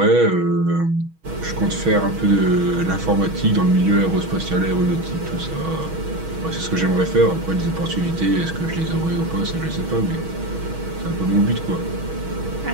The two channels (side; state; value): left; late; 6.2 ms